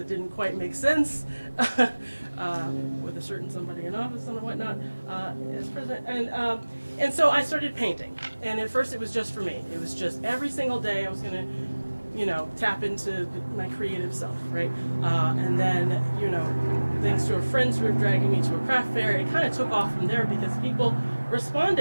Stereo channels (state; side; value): inverted; both; correlation -1.00